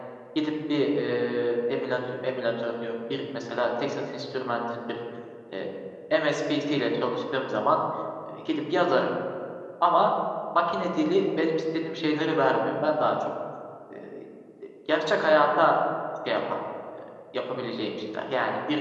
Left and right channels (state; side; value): identical; both; correlation 1.00